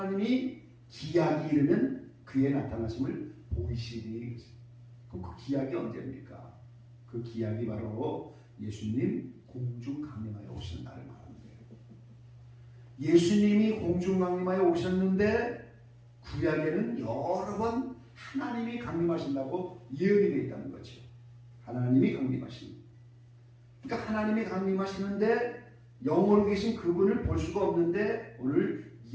기약이 이르면 그의 나타나심을 보이시리니 그랬어요. 그럼 그 기약이 언제입니까? 그 기약이 바로 예수님 공중 강림하여 오시는 날을 말하는 거예요. 예수님이 공중 강림하여 오셨는데 구약에는 여러 번 하나님이 강림하신다고 예언이 되어 있다는 거죠. 하나님이 강림하신. 그러니까 하나님이 강림하시는데 영으로 계신 그분을 볼 수가 없는데 오늘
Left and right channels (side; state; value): both; identical; correlation 1.00